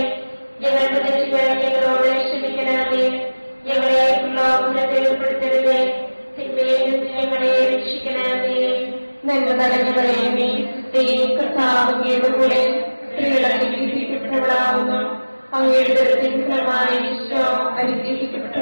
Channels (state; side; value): inverted; both; correlation -1.00